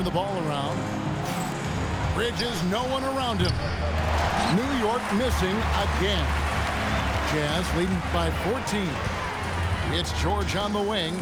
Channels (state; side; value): identical; both; correlation 1.00